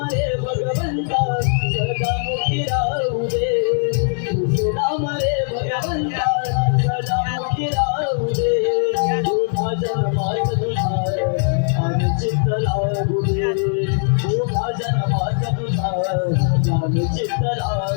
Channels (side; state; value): right; silent; 65 dB below the other